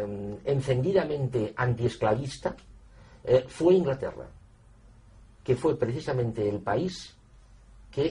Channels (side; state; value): both; identical; correlation 1.00